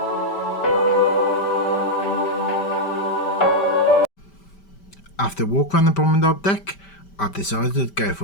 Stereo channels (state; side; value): late; right; 5.1 ms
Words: After a walk around the promenade deck, I've decided to go